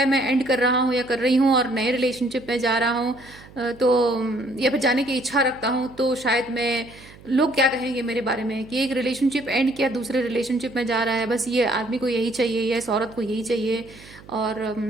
मैं एंड कर रहा हूँ या कर रही हूँ और नए रिलेशनशिप में जा रहा हूँ, तो या फिर जाने की इच्छा रखता हूँ, तो शायद मैं, लोग क्या कहेंगे मेरे बारे में कि एक रिलेशनशिप एंड किया, दूसरे रिलेशनशिप में जा रहा है, बस ये आदमी को यही चाहिए या इस औरत को यही चाहिए, और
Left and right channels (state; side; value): noise; right; hum, 21 dB below the sound